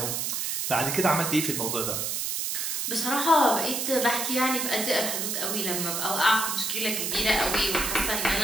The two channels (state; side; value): noise; right; hiss, 1 dB below the sound